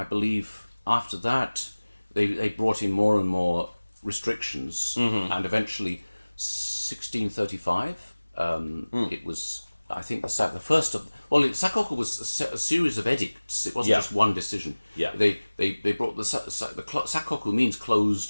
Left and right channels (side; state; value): both; inverted; correlation -1.00